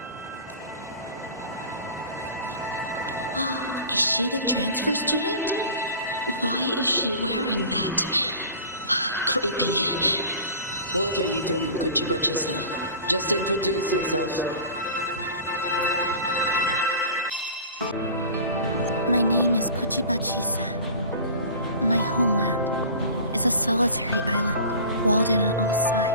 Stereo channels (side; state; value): both; inverted; correlation -0.39